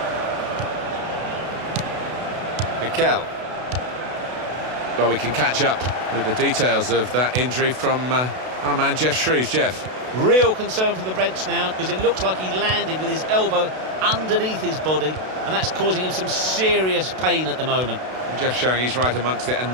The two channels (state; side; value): late; left; 32 ms